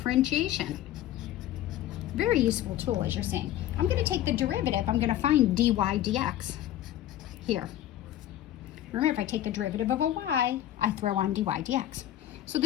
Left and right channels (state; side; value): quieter; right; 12.7 dB